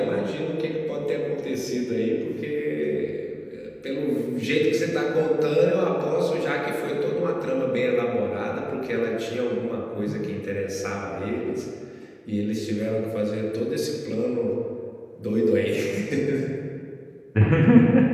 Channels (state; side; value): identical; both; correlation 1.00